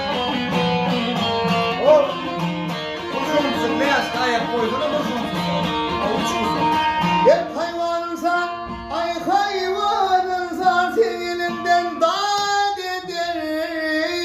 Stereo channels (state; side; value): identical; both; correlation 1.00